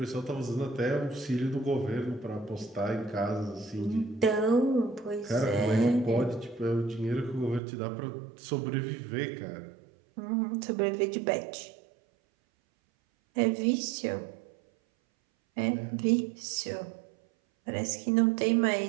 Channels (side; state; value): left; drops out; at 7.6 s